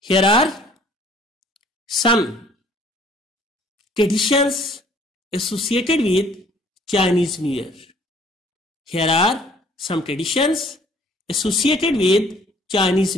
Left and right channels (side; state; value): both; normal; correlation 0.56